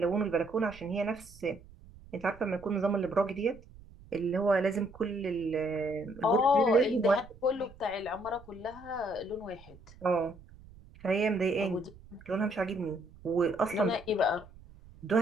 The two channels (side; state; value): right; noise; rumble, 21 dB below the sound